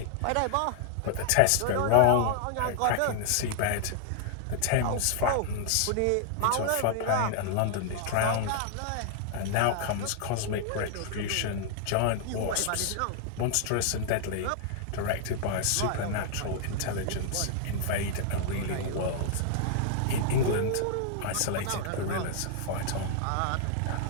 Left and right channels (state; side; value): different; both; correlation 0.00